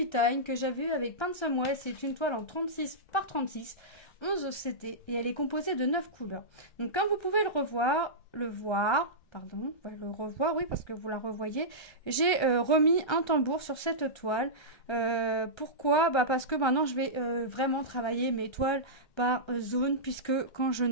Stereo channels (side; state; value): right; late; 1.3 ms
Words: Time que j'avais eue avec Pinsonwell. C'est une toile en 36 par 36, 11 OCT et elle est composée de 9 couleurs. Donc comme vous pouvez le revoir, oui parce que vous la revoyez, j'ai remis un tambour sur cette toile. Pourquoi? Parce que maintenant je vais vraiment travailler mes toiles par zone, puisque quand je